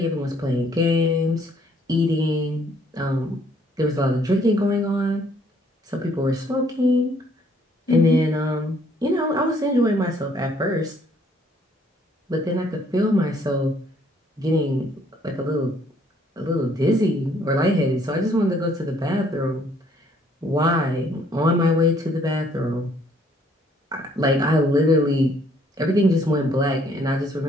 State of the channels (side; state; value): both; normal; correlation 0.64